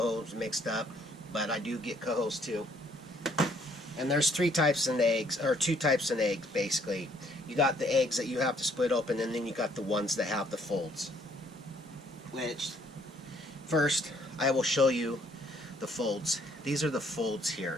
mixed up, but I do get cohos too. And there's 3 types in eggs, or 2 types in eggs basically. You got the eggs that you have to split open, and then you got the ones that have the folds. Which, first, I will show you the folds. These are the folds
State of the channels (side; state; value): both; normal; correlation 0.65